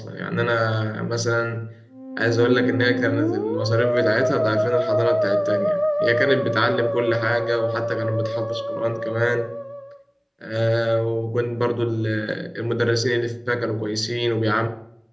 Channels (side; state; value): both; identical; correlation 1.00